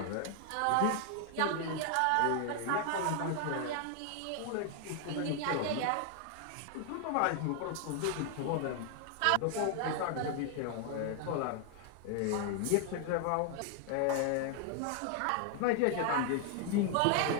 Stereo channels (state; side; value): different; both; correlation 0.00